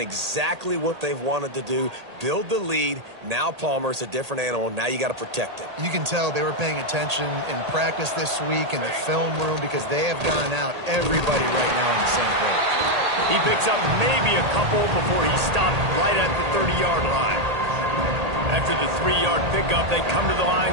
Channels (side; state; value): left; late; 1.8 ms